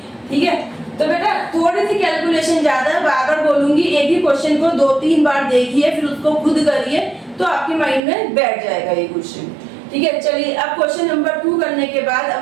ठीक है। तो बेटा थोड़ी सी कैलकुलेशन ज्यादा है, बार-बार बोलूंगी, एक ही क्वेश्चन को 2-3 बार देखिए, फिर उसको खुद करिए, तो आपके माइंड में बैठ जाएगा ये क्वेश्चन, ठीक है। चलिए अब क्वेश्चन नंबर 2 करने के बाद अब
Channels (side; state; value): left; drops out; at 8.0 s